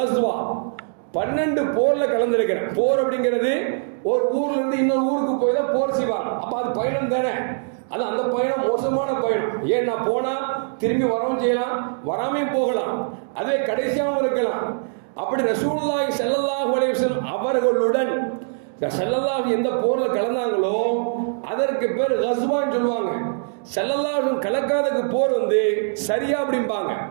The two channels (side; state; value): left; silent; digital silence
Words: 12 போர்ல கலந்துருக்கிறேன். போர் அப்படிங்கிறது ஒரு ஊர்ல இருந்து இன்னொரு ஊருக்கு போய் தான் போர் செய்வாங்க. அப்ப அது பயணம் தானே. அது அந்த பயணம் மோசமான பயணம். ஏன்னா போனா திரும்பி வரவும் செய்யலாம், வராமையும் போகலாம், அதே கடைசியாகவும் இருக்கலாம். அப்படி ரசூலுல்லாஹி ஸல்லல்லாஹு அலைஹி வஸல்லம் அவர்களுடன் ஸல்லல்லாஹு எந்த போர்ல கலந்தாங்களோ அதற்கு பேர் கஸ்வான்னு சொல்லுவாங்க. ஸல்லல்லாஹு கலக்காதக்கு போர் வந்து சரியா அப்படிம்பாங்க.